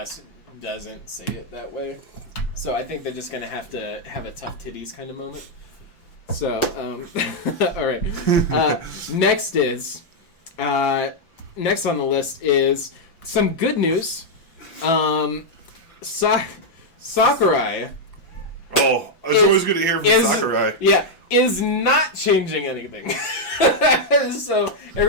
doesn't say it that way. So I think they're just gonna have to have a tough titties kind of moment. So, all right. Next on the list is some good news. Sakurai. Oh, it's always good to hear from Sakurai. Yeah, is not changing anything. So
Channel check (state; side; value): late; right; 5.9 ms